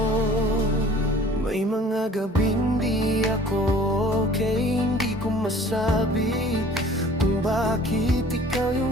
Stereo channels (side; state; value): both; normal; correlation 0.50